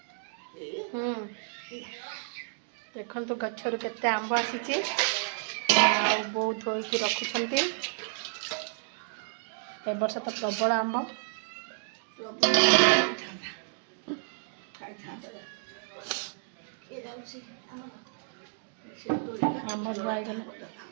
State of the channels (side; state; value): left; silent; digital silence